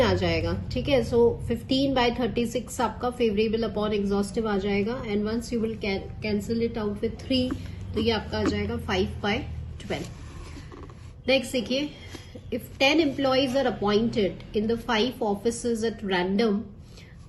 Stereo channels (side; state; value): both; identical; correlation 1.00